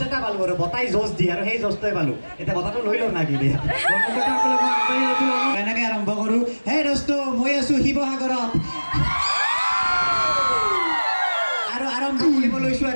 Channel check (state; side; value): inverted; both; correlation -1.00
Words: এটা পালোঁ আৰু বতাই জোচ দিয়ে আৰু সেই জোচটোৱে পালোঁ এতিয়া বতাহটো লৈ লওঁ না কি দিয়ে এনেকৈ আৰম্ভ কৰোঁ হে দোস্ত মই আছোঁ শিৱসাগৰত আৰু আৰম্ভ কৰিব লৈছোঁ